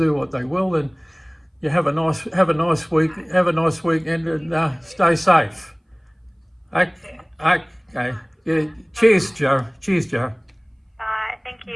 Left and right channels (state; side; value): identical; both; correlation 1.00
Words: what they will. And you have a nice week, have a nice weekend, and stay safe. Okay. Yeah. Cheers, Joe. Cheers, Joe. Bye. Thank